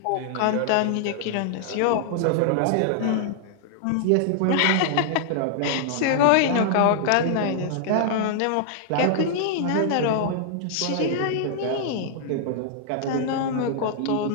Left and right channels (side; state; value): both; different; correlation -0.01